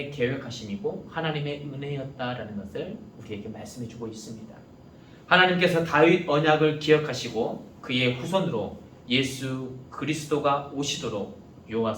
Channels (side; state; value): both; identical; correlation 1.00